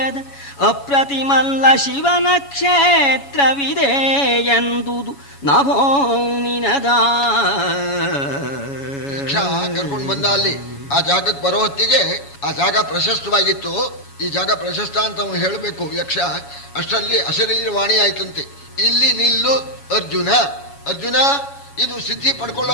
ಅಪ್ರತಿಮಲ್ಲ ಶಿವನ ಕ್ಷೇತ್ರವಿದೆ ಎಂದುದು ನಭೋ ನಿನದ. ಯಕ್ಷ ಕರ್ಕೊಂಡು ಬಂದ ಅಲ್ಲಿ ಆ ಜಾಗಕ್ಕೆ ಬರೋ ಹೊತ್ತಿಗೆ ಆ ಜಾಗ ಪ್ರಶಸ್ತವಾಗಿತ್ತು. ಈ ಜಾಗ ಪ್ರಶಸ್ತ ಅಂತ ಅವನು ಹೇಳಬೇಕು ಯಕ್ಷ. ಅಷ್ಟರಲ್ಲಿ ಅಶರೀರ ವಾಣಿ ಆಯ್ತಂತೆ, ಇಲ್ಲಿ ನಿಲ್ಲು ಅರ್ಜುನ. ಅರ್ಜುನ, ಇದು ಸಿದ್ಧಿ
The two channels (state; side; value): late; right; 7.2 ms